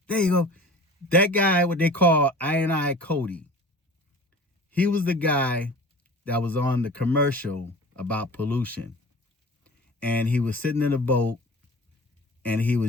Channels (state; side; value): normal; both; correlation 0.40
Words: There you go. That guy, what they call I Cody, he was the guy that was on the commercial about pollution. And he was sitting in a boat and he